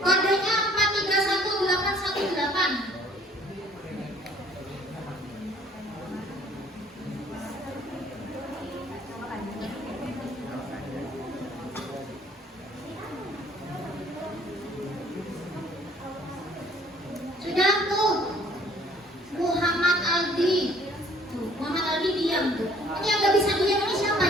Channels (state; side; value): normal; both; correlation 0.57